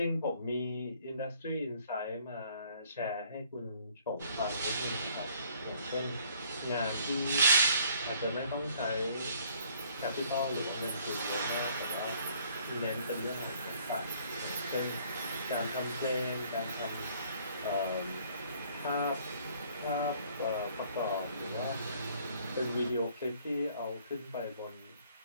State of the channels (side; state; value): both; inverted; correlation -0.61